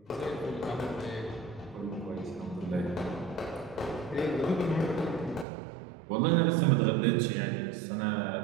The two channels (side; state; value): left; drops out; at 5.5 s